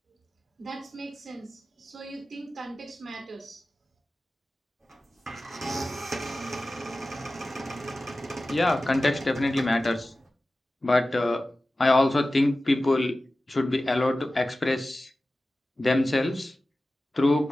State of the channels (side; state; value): both; normal; correlation 0.96